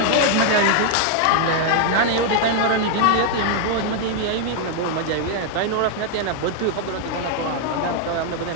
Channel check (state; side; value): different; both; correlation 0.00